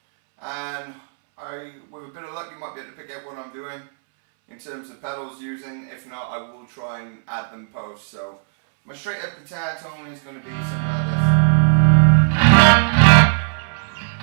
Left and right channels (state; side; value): silent; left; 66 dB below the other